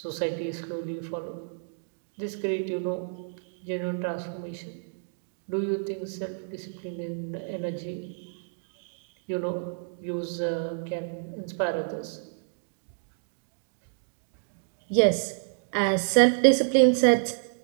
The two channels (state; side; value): silent; left; digital silence